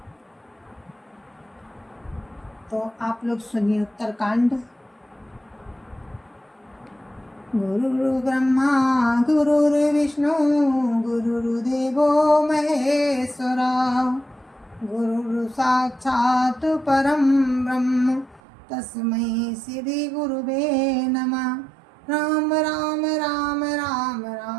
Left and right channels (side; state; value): left; drops out; at 18.4 s